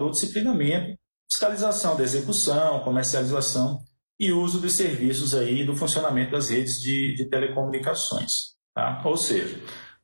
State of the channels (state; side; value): inverted; both; correlation -1.00